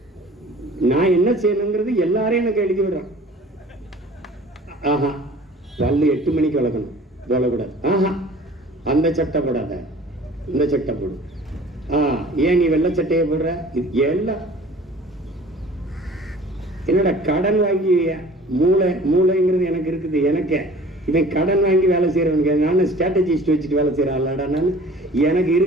நான் என்ன செய்யணுங்கிறது எல்லாரையும் எனக்கு எழுதி விடுறான். ஆஹா, பல்லு 8 மணிக்கு வளர்க்கணும், போடக்கூடாது. ஆஹா, அந்த சட்டை போடாத, இந்த சட்டை போடு. ஏன் நீ வெள்ளை சட்டையை போடுற? இது எல்லாம் என்னோட கடன் வாங்கி மூளைங்கிறது எனக்கு இருக்குது. எனக்கு இவன் கடன் வாங்கி வேலை செய்யறவனுக்கு நான் ஸ்ட்ராட்டஜிஸ்ட் வச்சுட்டு வேலை செய்யற ஆளாடா. நான் எனக்கு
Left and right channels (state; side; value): normal; both; correlation 0.47